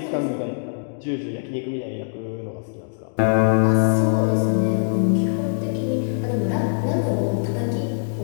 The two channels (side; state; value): right; silent; digital silence